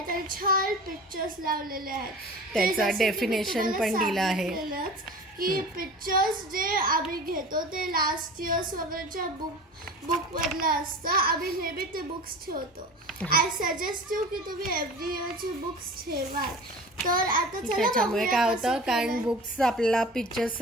आणि छान पिक्चर्स लावलेले आहेत. त्याचा डेफिनेशन पण दिला आहे की पिक्चर्स जे आम्ही घेतो ते लास्ट इयर्स वगैरेच्या बुक मधलं असतं. आम्ही नेहमी ते बुक्स ठेवतो. आय सजेस्ट यू की तुम्ही एव्हरी इयरची बुक्स ठेवा. तर आता त्याच्यामुळे काय होतं, कारण बुक्स आपल्याला पिक्चर्स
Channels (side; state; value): both; normal; correlation 0.37